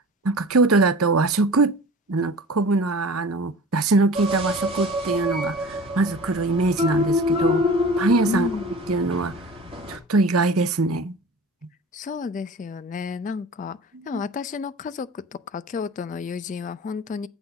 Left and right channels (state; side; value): normal; both; correlation 0.40